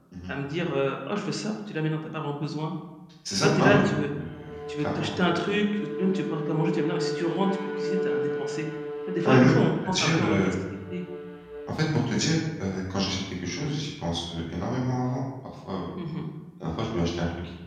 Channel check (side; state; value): both; identical; correlation 1.00